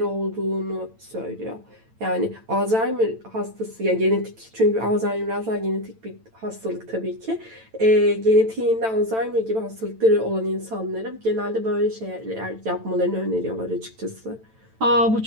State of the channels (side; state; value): left; late; 9.0 ms